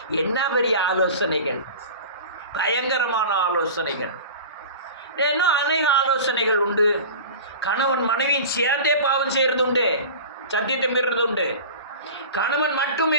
என்ன பெரிய ஆலோசனைகள், பயங்கரமான ஆலோசனைகள். இன்னும் அநேக ஆலோசனைகள் உண்டு. கணவன் மனைவியின் சேர்ந்தே பாவம் செய்யறது உண்டு, சத்தியத்தை மீறது உண்டு. கணவன் மட்டும்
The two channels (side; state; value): both; inverted; correlation -0.35